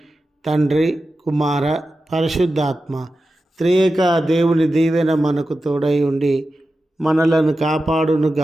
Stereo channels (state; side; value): normal; both; correlation 0.92